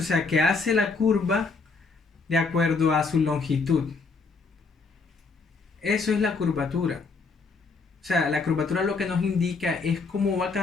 o sea, que hace la curva de acuerdo a su longitud. Eso es la curvatura. O sea, la curvatura lo que nos indica es cómo va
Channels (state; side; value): quieter; right; 4.3 dB